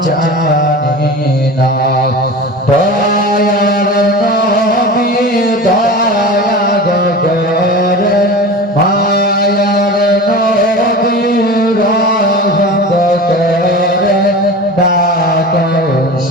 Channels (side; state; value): both; normal; correlation 0.32